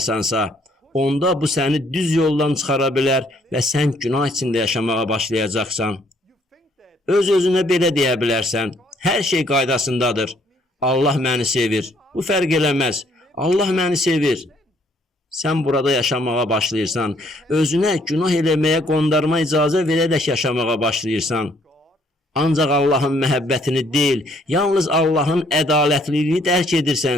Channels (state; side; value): normal; both; correlation 0.66